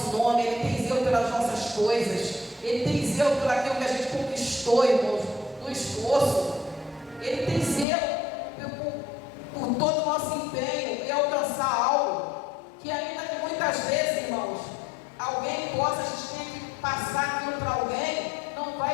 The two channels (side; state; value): right; drops out; at 7.9 s